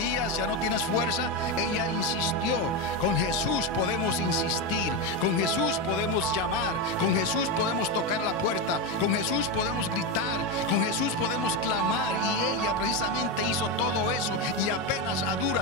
ya no tienes fuerza, ella insistió. Con Jesús podemos insistir, con Jesús podemos llamar, con Jesús podemos tocar la puerta, con Jesús podemos gritar, con Jesús podemos clamar. Y ella precisamente hizo todo eso, y apenas a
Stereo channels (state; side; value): normal; both; correlation 0.11